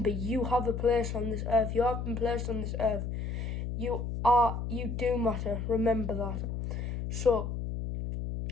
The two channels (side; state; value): left; noise; hum, 4 dB below the sound